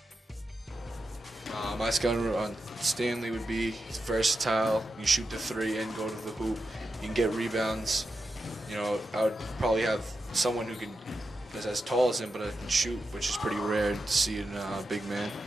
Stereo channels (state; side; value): normal; both; correlation 0.89